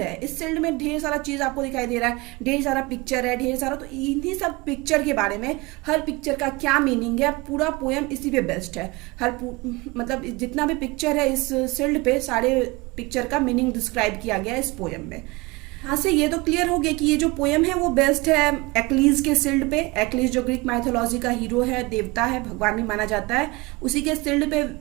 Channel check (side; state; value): left; quieter; 23.9 dB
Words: इस सिल्ड में ढेर सारा चीज़ आपको दिखाई दे रहा है, ढेर सारा पिक्चर है, ढेर सारा। तो इन्हीं सब पिक्चर के बारे में, हर पिक्चर का क्या मीनिंग है, पूरा पोएम इसी पे बेस्ड है। मतलब जितना भी पिक्चर है इस सिल्ड पे, सारे पिक्चर का मीनिंग डिस्क्राइब किया गया है इस पोएम में। हाँ से ये तो क्लियर हो गया कि ये जो पोएम है वो बेस्ड है एक्लिस के सिल्ड पे। एक्लिस जो ग्रीक माइथोलॉजी का हीरो है, देवता है, भगवान भी माना जाता है, उसी के सिल्ड पे